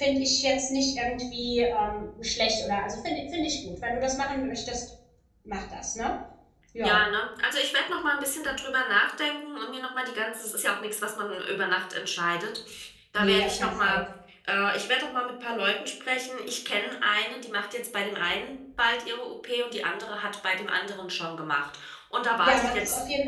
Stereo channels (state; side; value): identical; both; correlation 1.00